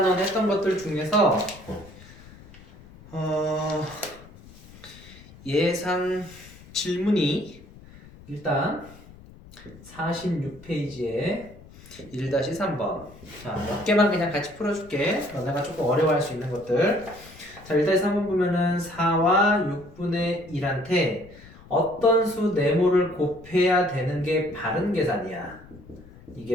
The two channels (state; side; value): noise; left; rumble, 21 dB below the sound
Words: 했던 것들 중에서 예상 질문이 일단 46페이지에 1-3번 자, 몇 개만 그냥 같이 풀어줄게. 너네가 조금 어려워할 수 있는 것들. 자, 1-3번 보면은 4와 6분의 1한테 어떤 수 네모를 곱해야 되는 게 바른 계산이야.